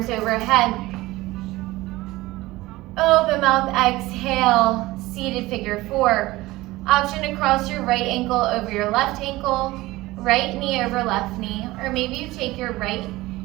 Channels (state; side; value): quieter; left; 18.8 dB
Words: overhead. Open mouth, exhale, seated figure 4. Option to cross your right ankle over your left ankle, right knee over left knee, or maybe you take your right